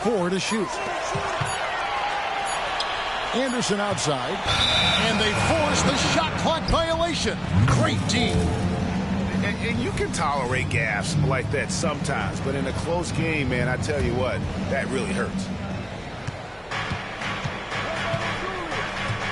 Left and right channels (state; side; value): identical; both; correlation 1.00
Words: to shoot. Anderson outside. And they force the shot clock violation. Great D. And you can tolerate gaffes like that sometimes, but in a close game, man, I tell you what, that really hurts.